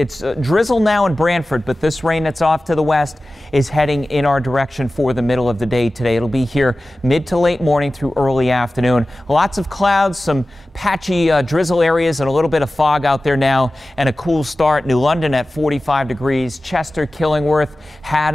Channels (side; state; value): both; normal; correlation 0.96